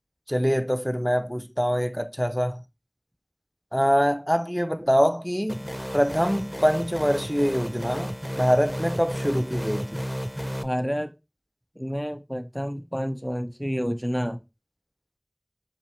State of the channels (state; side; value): identical; both; correlation 1.00